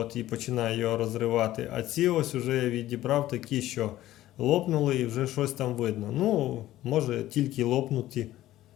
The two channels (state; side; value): quieter; right; 14.6 dB